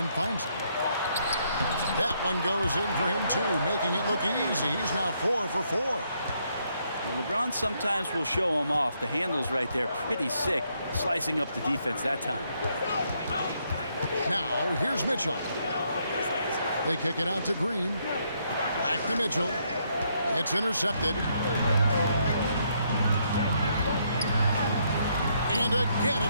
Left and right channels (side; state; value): both; inverted; correlation -0.74